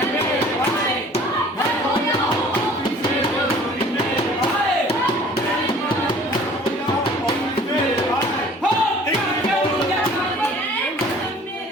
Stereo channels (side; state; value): both; normal; correlation 0.51